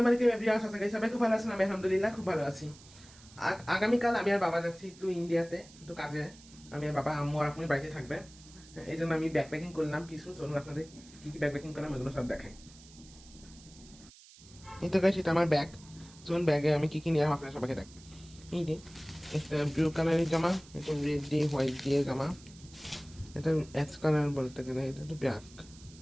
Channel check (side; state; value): right; noise; hiss, 22 dB below the sound